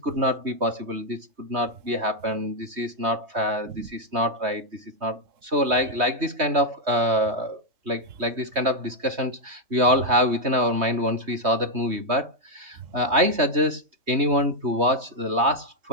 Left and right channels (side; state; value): left; late; 3.2 ms